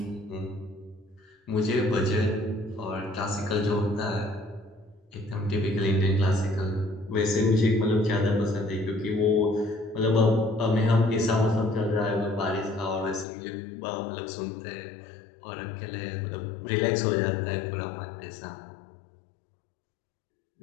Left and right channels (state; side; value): drops out; right; at 13.2 s